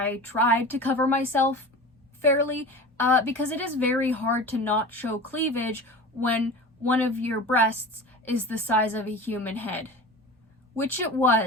tried to cover myself fairly, because it is very hard to not show cleavage when one of your breasts is the size of a human head. Which it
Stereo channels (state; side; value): normal; both; correlation 0.34